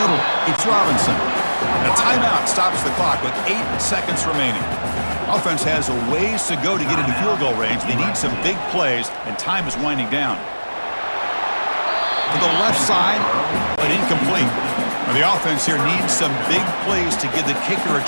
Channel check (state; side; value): inverted; both; correlation -1.00